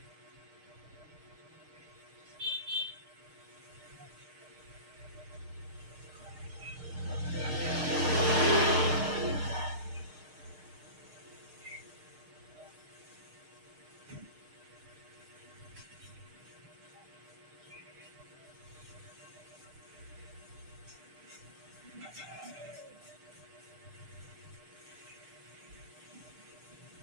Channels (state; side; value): late; left; 6.6 ms